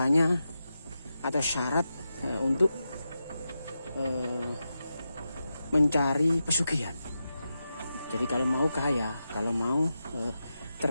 atau syarat untuk mencari pesugihan. Jadi kalau mau kaya, kalau mau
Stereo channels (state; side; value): inverted; both; correlation -0.89